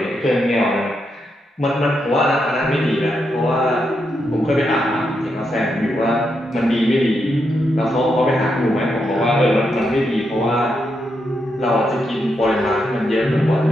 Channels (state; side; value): normal; both; correlation 0.82